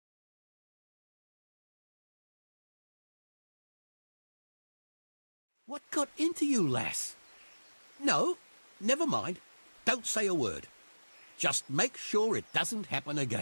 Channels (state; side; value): inverted; both; correlation -1.00